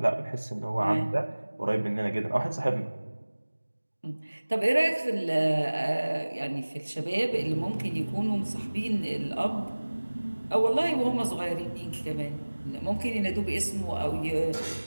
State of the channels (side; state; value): both; inverted; correlation -1.00